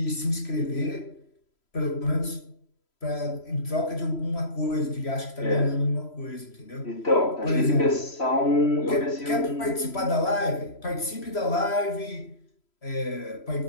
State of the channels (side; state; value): right; late; 3.0 ms